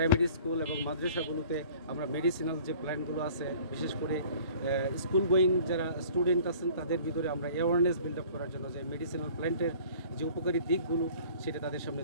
স্কুল এবং মাদ্রাসাগুলোতে আমরা মেডিসিনাল যে প্ল্যান্টগুলো আছে, বিশেষ করে স্কুল গোয়িং যারা স্টুডেন্ট আছেন তাদের ভিতরে আমরা অ্যাওয়ারনেস বিল্ড আপ করার জন্য যে মেডিসিনাল প্ল্যান্টের যে উপকারী দিকগুলো সেটা তাদের সামনে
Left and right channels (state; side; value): inverted; both; correlation -0.50